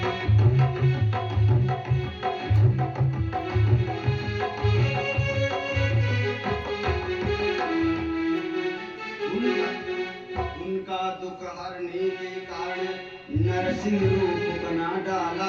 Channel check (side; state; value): both; identical; correlation 1.00